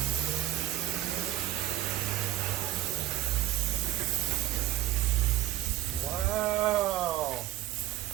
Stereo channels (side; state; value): left; quieter; 14.2 dB